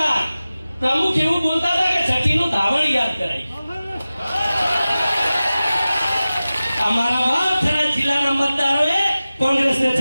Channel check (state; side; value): inverted; both; correlation -0.96